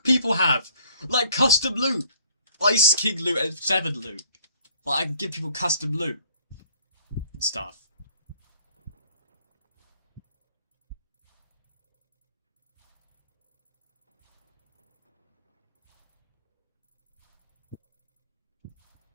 people have! Like custom loot! Ice King loot and 7 loot. Like, I can give people custom loot. And stuff.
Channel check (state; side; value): inverted; both; correlation -0.59